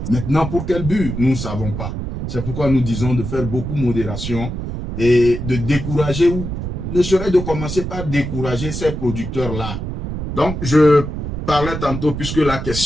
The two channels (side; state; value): right; noise; rumble, 5 dB below the sound